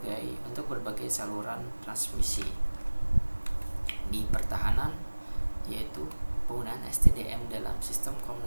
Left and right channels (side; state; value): both; inverted; correlation -1.00